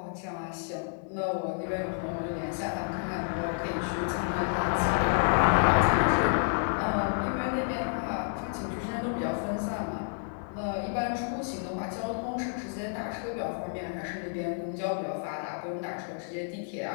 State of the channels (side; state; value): right; silent; 58 dB below the other